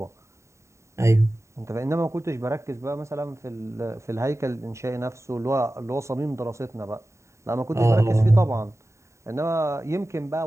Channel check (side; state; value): left; late; 0.14 ms